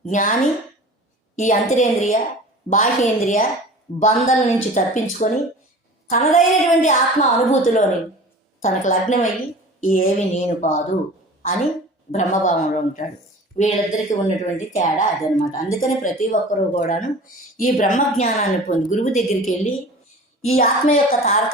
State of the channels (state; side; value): normal; both; correlation 0.40